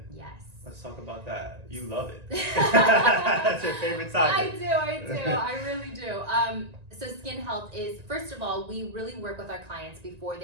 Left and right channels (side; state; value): left; late; 1.9 ms